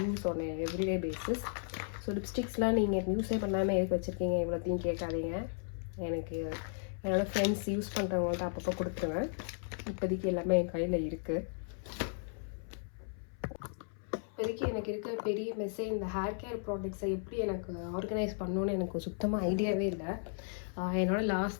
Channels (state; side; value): silent; right; 54 dB below the other